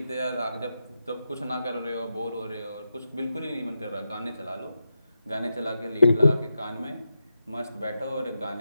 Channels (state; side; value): inverted; both; correlation -0.88